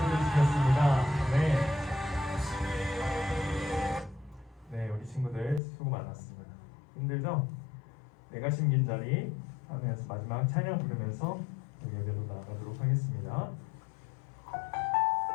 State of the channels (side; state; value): right; drops out; at 5.6 s